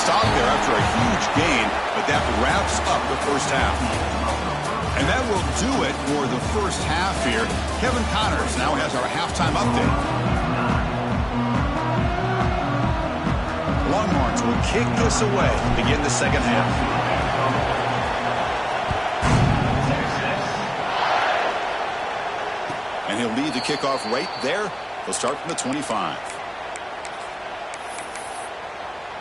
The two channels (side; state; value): both; identical; correlation 1.00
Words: there after a huge gain, but that wraps up the first half. And that will do it for the first half here. Kevin Connors now has our halftime update. Longhorns will kick this away to begin the second half. And he'll lead the kickoff right there. He'll start from the 25.